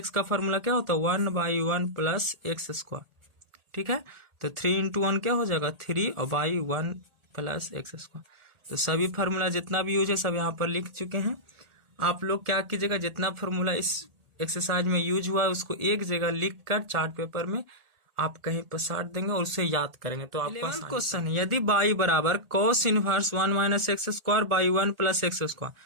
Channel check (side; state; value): left; late; 1.8 ms